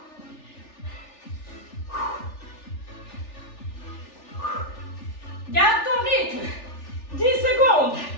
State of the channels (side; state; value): right; late; 3.4 ms